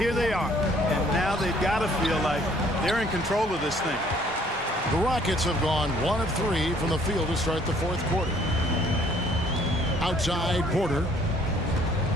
they are. And now they've got to feel like they're in control of this thing. The Rockets have gone 1 of 3 from the field to start the fourth quarter. Outside Porter.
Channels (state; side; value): normal; both; correlation 0.60